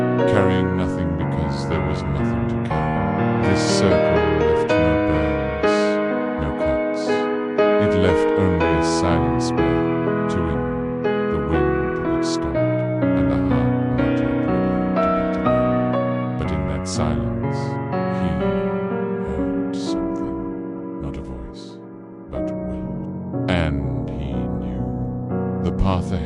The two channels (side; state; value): both; identical; correlation 1.00